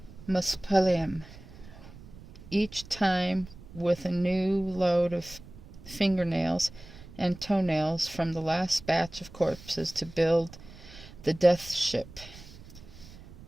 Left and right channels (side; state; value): right; noise; rumble, 18 dB below the sound